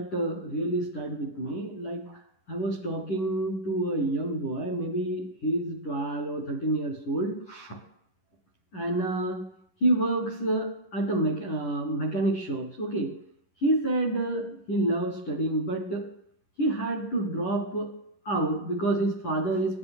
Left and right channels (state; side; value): late; right; 11 ms